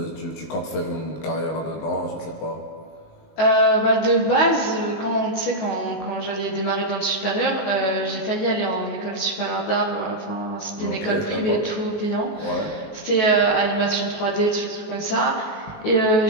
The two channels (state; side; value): late; right; 19 ms